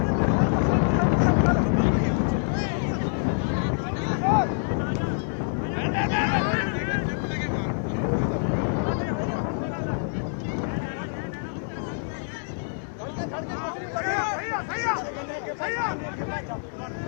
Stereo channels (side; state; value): right; silent; digital silence